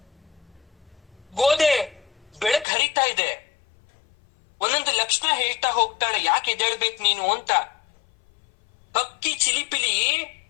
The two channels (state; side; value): drops out; right; at 2.7 s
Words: ಗೋದೆ ಬೆಳಕ್ ಹರಿತಾ ಇದೆ, ಒಂದೊಂದು ಲಕ್ಷಣ ಹೇಳ್ತಾ ಹೋಗ್ತಾಳೆ, ಯಾಕೆ ಎದ್ದೇಳ್ಬೇಕು ನೀನು ಅಂತ. ಹಕ್ಕಿ ಚಿಲಿಪಿಲಿ